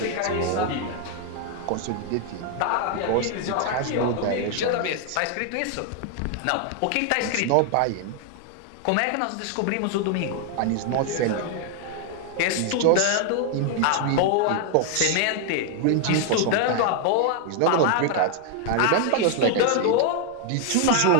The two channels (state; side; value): different; both; correlation 0.00